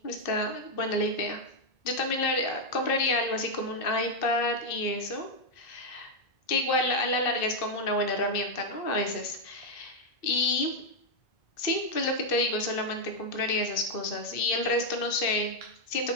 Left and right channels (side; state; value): right; late; 2.6 ms